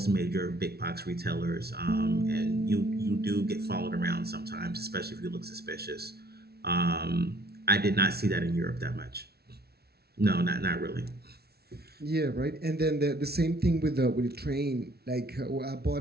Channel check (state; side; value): late; left; 0.46 ms